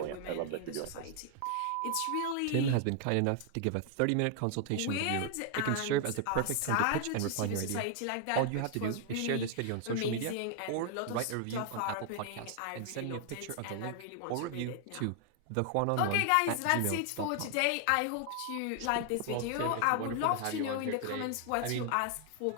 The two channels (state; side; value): different; both; correlation 0.00